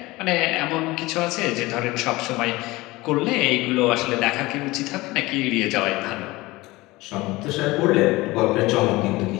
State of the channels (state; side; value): quieter; right; 20.6 dB